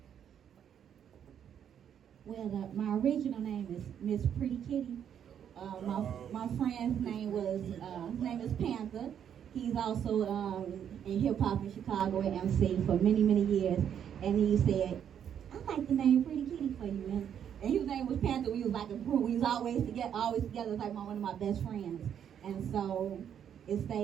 Well, my original name is Miss Pretty Kitty. My friend's name was his name is Panther. He's also in hip hop in Chicago at MC for many years. And he said, "I like the name Pretty Kitty for you." And his name was Panther. We was like a group. We was always together. It's like one of my best friends. And so it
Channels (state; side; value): quieter; left; 8.9 dB